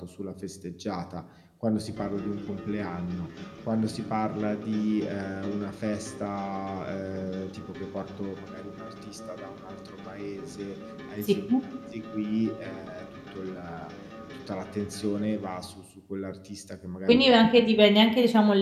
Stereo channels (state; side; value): identical; both; correlation 1.00